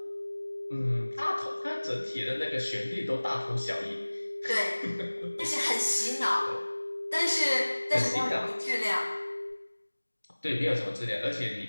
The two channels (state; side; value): inverted; both; correlation -1.00